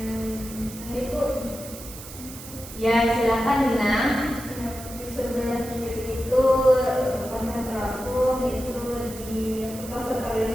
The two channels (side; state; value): right; noise; hiss, 14 dB below the sound